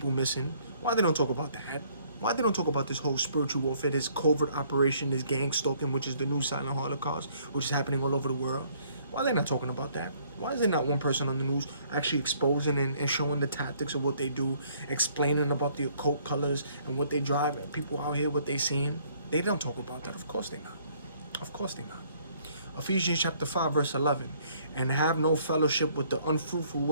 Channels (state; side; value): inverted; both; correlation -0.63